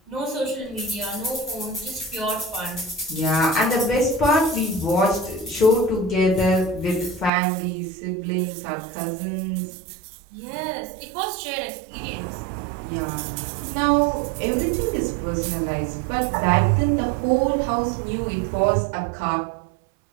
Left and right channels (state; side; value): drops out; left; at 7.3 s